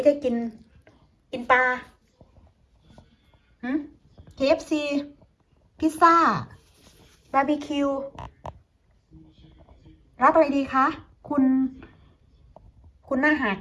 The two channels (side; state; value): both; identical; correlation 1.00